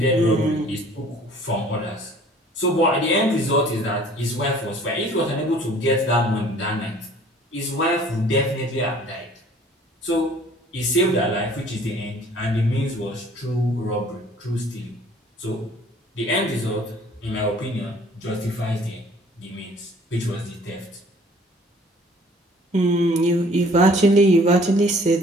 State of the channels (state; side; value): normal; both; correlation 0.53